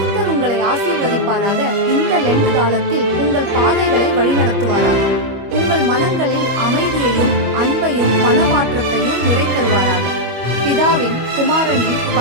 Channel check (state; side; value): late; left; 25 ms